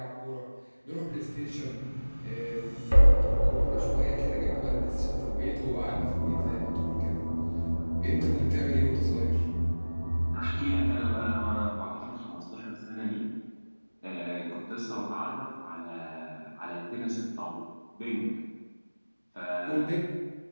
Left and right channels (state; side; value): inverted; both; correlation -1.00